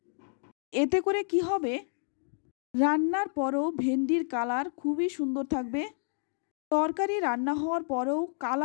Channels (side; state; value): right; silent; digital silence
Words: এতে করে কি হবে, রান্নার পরেও ভেন্ডির কালার খুবই সুন্দর থাকবে। তরকারি রান্না হওয়ার পরেও